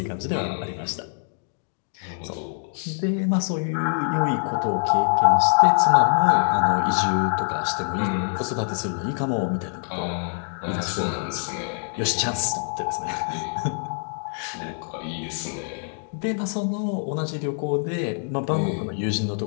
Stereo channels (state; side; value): silent; right; 62 dB below the other